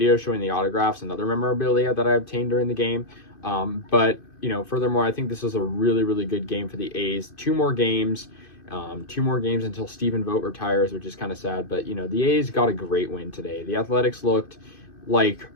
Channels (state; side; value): late; right; 2.5 ms